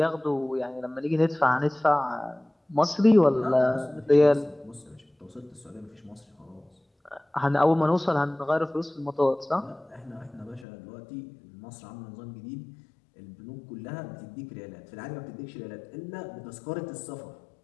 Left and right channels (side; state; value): right; drops out; at 10.7 s